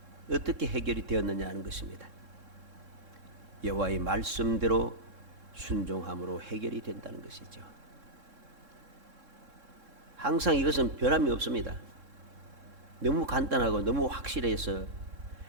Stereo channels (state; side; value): late; left; 3.7 ms